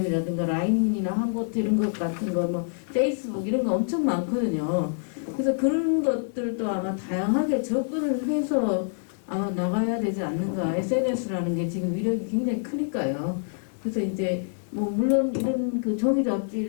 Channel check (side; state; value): right; silent; digital silence